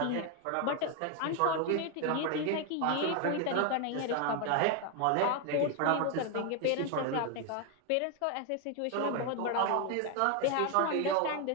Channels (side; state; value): both; different; correlation 0.01